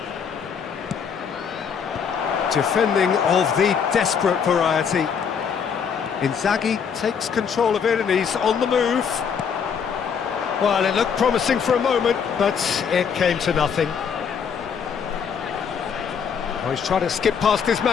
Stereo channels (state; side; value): quieter; right; 6.9 dB